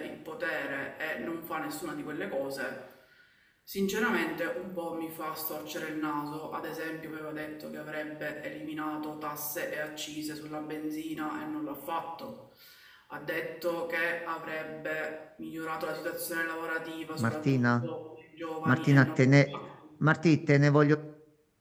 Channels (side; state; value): both; identical; correlation 1.00